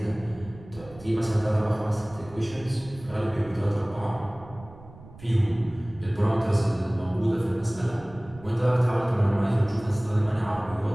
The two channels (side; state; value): right; noise; rumble, 19 dB below the sound